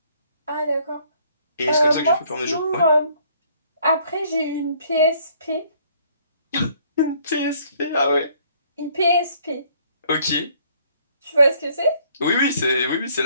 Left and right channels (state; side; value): inverted; both; correlation -0.63